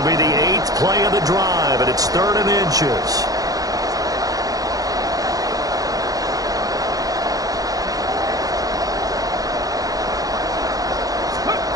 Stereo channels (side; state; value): left; late; 0.17 ms